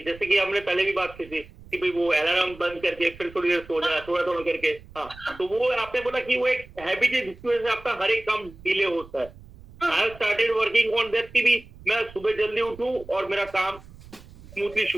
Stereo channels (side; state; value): right; noise; rumble, 20 dB below the sound